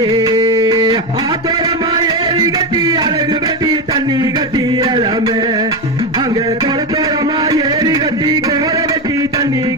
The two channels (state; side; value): noise; right; hum, 28 dB below the sound